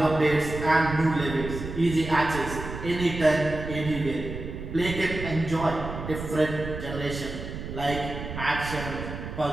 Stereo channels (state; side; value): noise; right; rumble, 8 dB below the sound